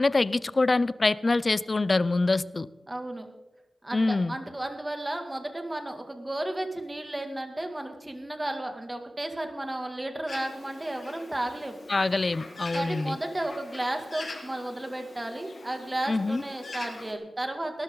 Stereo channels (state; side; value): normal; both; correlation 0.97